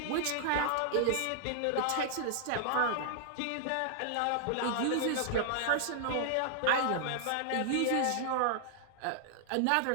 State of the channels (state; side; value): different; both; correlation -0.01